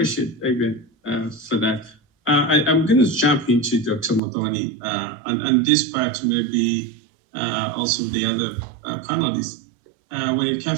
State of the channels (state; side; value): drops out; left; at 4.2 s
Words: Evan for that. I'm going to jump into Dr. Modoni, and this part maybe also the other panelists. When it